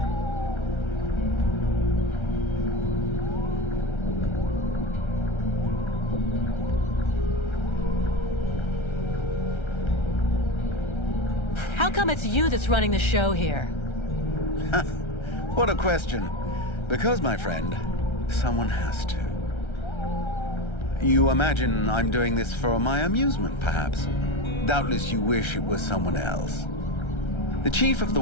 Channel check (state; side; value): late; right; 1.3 ms